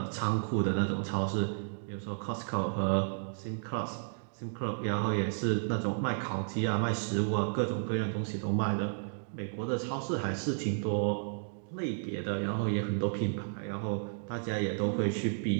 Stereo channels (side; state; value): left; silent; digital silence